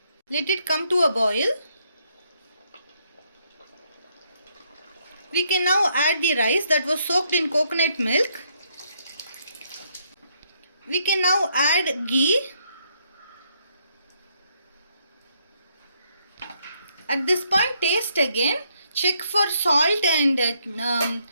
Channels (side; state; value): both; inverted; correlation -0.73